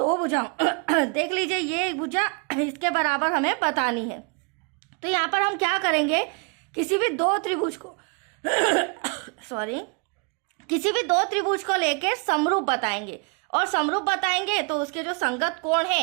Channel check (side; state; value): left; quieter; 34.4 dB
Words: भुजाओं देख लीजिए, ये भुजा इसके बराबर हमें बतानी है। तो यहाँ पर हम क्या करेंगे, किसी भी दो त्रिभुज को किसी भी दो त्रिभुज को लेके समरूप बताएंगे, और समरूप बताएंगे तो उसके जो संगत कोण